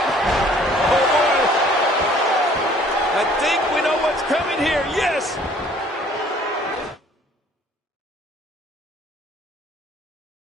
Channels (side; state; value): both; normal; correlation 0.56